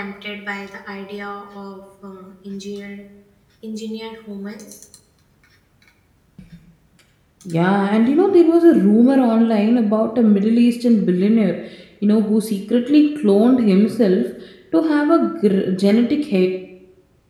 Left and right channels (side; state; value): both; identical; correlation 1.00